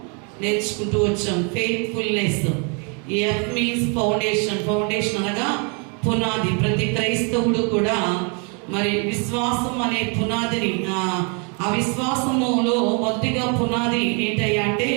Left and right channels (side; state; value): left; quieter; 36.2 dB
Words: నేర్చుకుంటూ వచ్చాం. Faithfulness. F means foundation. Foundation అనగా పునాది. ప్రతి క్రైస్తవుడు కూడా మరి విశ్వాసం అనే పునాదిని, ఆ విశ్వాసములో మొదటిగా పునాది ఏంటయ్యా అంటే